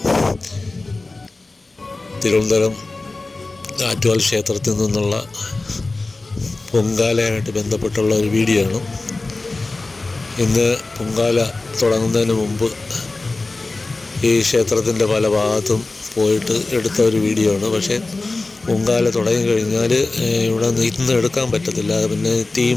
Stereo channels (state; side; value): quieter; right; 3.3 dB